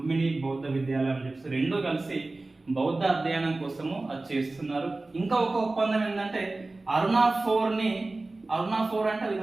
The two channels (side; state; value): left; quieter; 3.1 dB